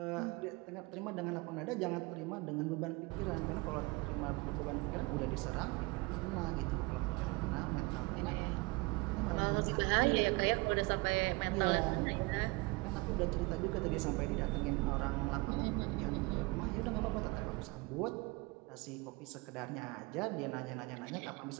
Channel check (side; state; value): left; quieter; 25.4 dB